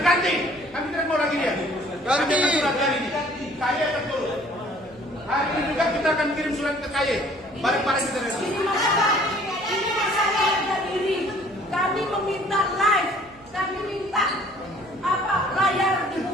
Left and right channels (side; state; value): right; noise; hum, 24 dB below the sound